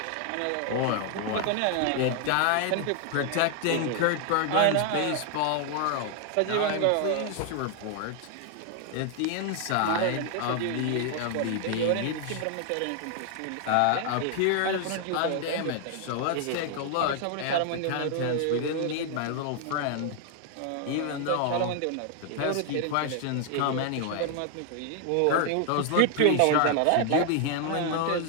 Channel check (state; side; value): different; both; correlation 0.00